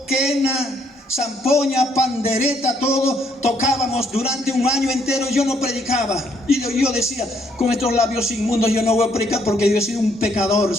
quena, zampoña, pandereta, todo tocábamos durante un año entero. Yo no predicaba y yo decía, con estos labios inmundos yo no voy a predicar porque yo he sido un pecador,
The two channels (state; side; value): normal; both; correlation 0.70